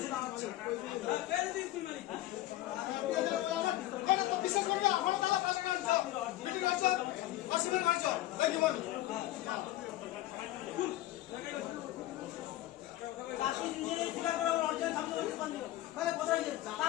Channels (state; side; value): quieter; right; 15.3 dB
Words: আমার আমার তো বিশেষ করে আমার তারা পাশে কাজ মিটিং আছে আসলে মারছ এই জীবন পাশে নিজের ঠিকা করে অর্জন সামনে করতে পারলো তাহলে কোথায় যাচ্ছে,